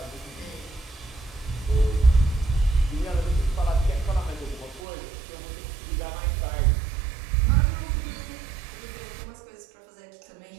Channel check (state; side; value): drops out; left; at 4.8 s